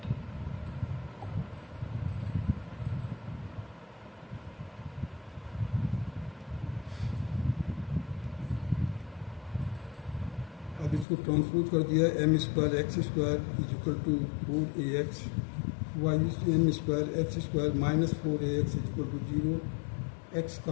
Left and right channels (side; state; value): right; drops out; at 11.1 s